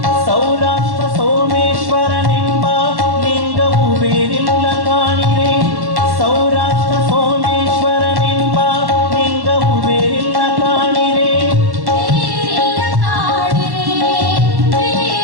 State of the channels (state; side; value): late; left; 1.1 ms